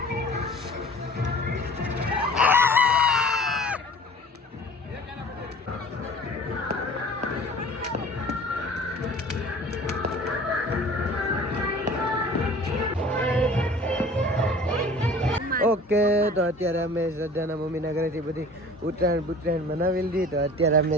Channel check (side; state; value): both; normal; correlation 0.45